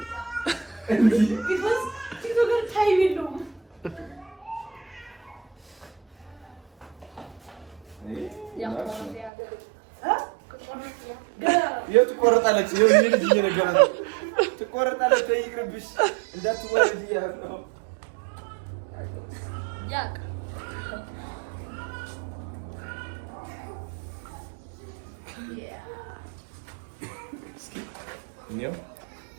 እንዴ ቢኮዝ ቲክቶከር ታይም የለውም። የት ትቆረጣለች? የዚህ ልጅ እየነገራት ነው። ትቆረጣለች። ይቅርብሽ እንዳትወረድ እያለ ነው። ያቅ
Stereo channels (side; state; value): left; drops out; at 9.3 s